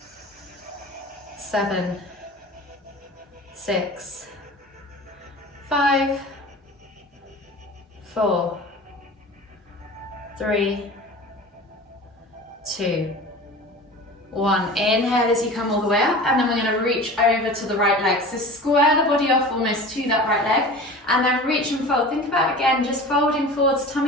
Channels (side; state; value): both; normal; correlation 0.37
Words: 7, 6, 5, 4, 3, 2, 1. Inhale as you come all the way up, and then we're going to reach over to the right leg. So square the body off almost to that right leg, and then reach and fold. Think about, again, just folding forwards,